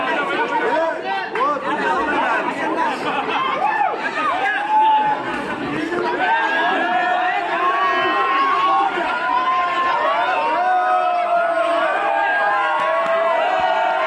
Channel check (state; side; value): identical; both; correlation 1.00